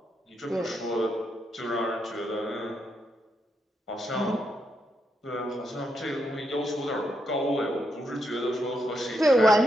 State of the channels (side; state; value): both; normal; correlation 0.81